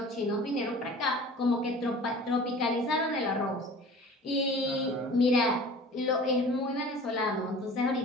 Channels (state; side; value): normal; both; correlation 0.43